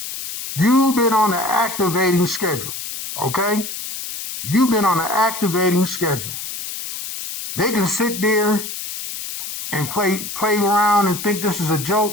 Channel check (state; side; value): noise; left; hiss, 8 dB below the sound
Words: You've been on an activating schedule. Okay? You've been on an activating schedule. They can sit there and play around and think this is a